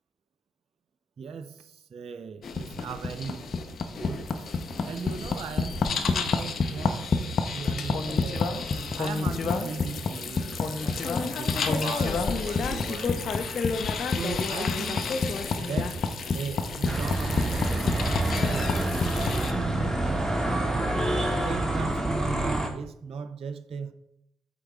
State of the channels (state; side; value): normal; both; correlation 0.81